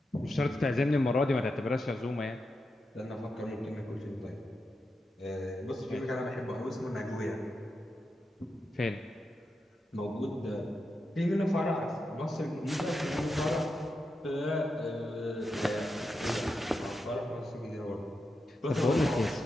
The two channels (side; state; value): both; normal; correlation 0.87